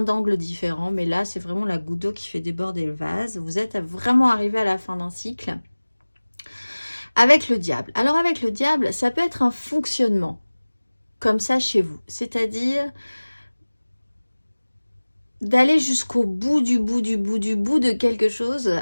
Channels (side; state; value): both; inverted; correlation -1.00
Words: différents, mais là c'est vraiment la goutte d'eau qui fait déborder le vase. Vous êtes vraiment arrivé à la fin d'un cycle avec le diable. Alors avec le diable, ça peut être un fonctionnement comme ça chez vous, c'est-à-dire d'aller jusqu'au bout de quelque chose